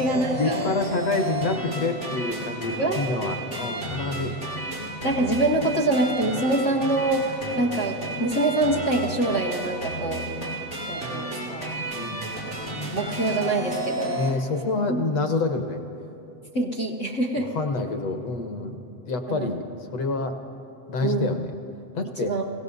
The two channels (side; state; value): right; late; 7.6 ms